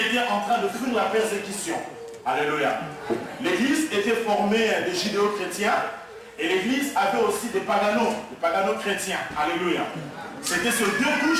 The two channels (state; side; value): identical; both; correlation 1.00